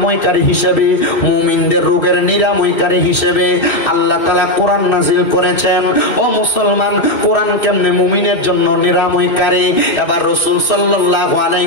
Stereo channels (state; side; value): late; right; 2.6 ms